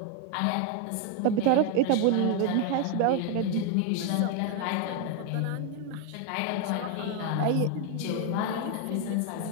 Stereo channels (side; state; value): both; different; correlation 0.01